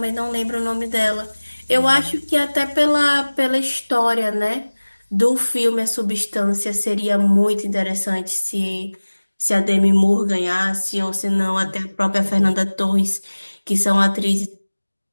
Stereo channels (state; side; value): inverted; both; correlation -1.00